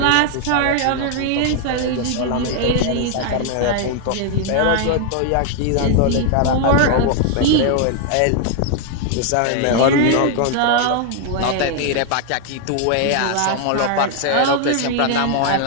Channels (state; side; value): different; both; correlation 0.00